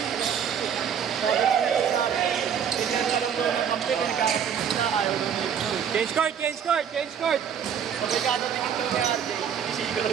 Sabi ko nito sa akin. Tingnan ka lang daw ng kampi. Pinagkakasin sila. Ayaw daw na ito. Change court, change court, change court! Pag nagkatatingin daw ni RJ, sinisigaw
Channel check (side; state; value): left; quieter; 8.0 dB